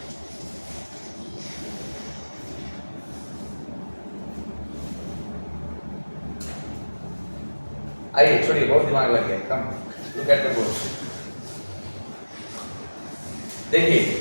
आइए छोड़िए, बहुत दिमाग लग गया। Come look at the board. देखिए,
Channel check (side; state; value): both; inverted; correlation -1.00